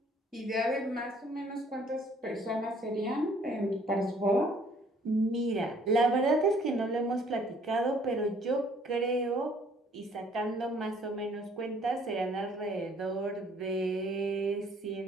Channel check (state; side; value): normal; both; correlation 0.60